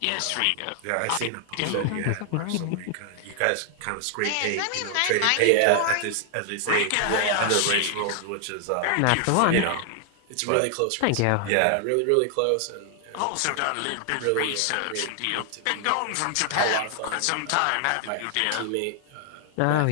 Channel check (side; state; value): both; different; correlation 0.00